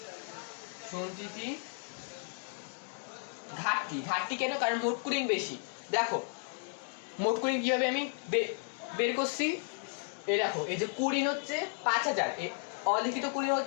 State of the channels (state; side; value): silent; right; 55 dB below the other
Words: সঞ্চিতি ঘাটতি। ঘাটতি কেন? কারণ মোট কুড়িন বেশি। দেখো মোট কুড়িন কিভাবে আমি বের করছি। এই দেখো এই যে কুড়িন হচ্ছে 5,000, এই অলিখিত কুড়িন